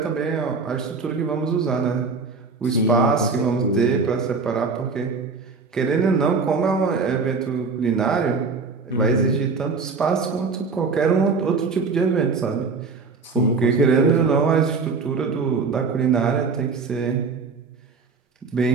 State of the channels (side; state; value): left; quieter; 4.6 dB